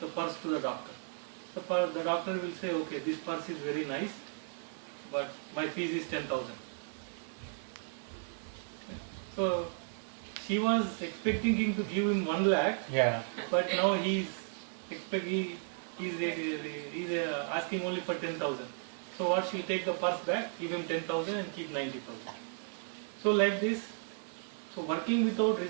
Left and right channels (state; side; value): silent; left; 55 dB below the other